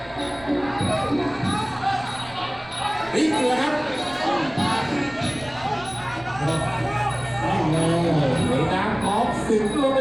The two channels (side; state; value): right; noise; rumble, 22 dB below the sound